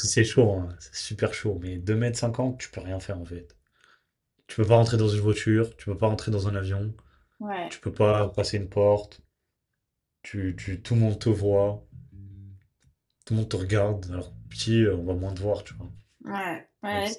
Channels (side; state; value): both; identical; correlation 1.00